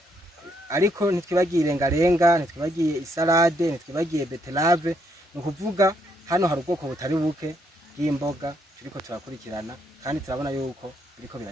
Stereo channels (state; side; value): normal; both; correlation 0.74